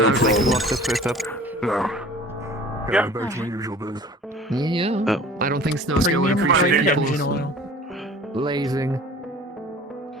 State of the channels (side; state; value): both; normal; correlation 0.45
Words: I'd like to problem. lock the first up. No. Yeah, back to my usual biz. Yeah. Oh. I don't think Snowscale would appreciate people's lazing.